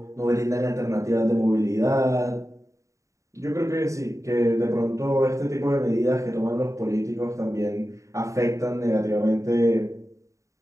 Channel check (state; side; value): late; left; 0.15 ms